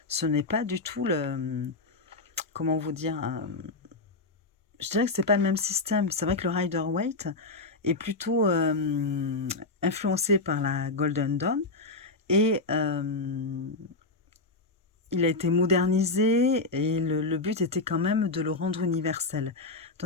Ce n'est pas du tout le... Comment vous dire je dirais que c'est pas le même système. C'est vrai que le Rider-Waite est plutôt influencé par la Golden Dawn et il a été modernisé et le but était quand même de le rendre universel.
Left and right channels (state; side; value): quieter; right; 3.4 dB